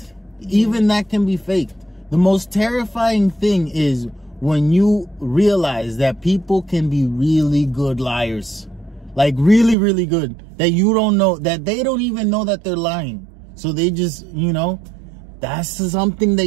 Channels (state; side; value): drops out; left; at 9.8 s